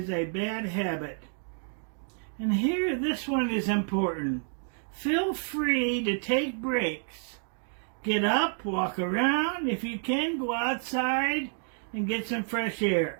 a bad habit. And here, this one is important. Feel free to take breaks. Get up, walk around. If you can, go outside and get some fresh air.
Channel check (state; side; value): silent; left; 58 dB below the other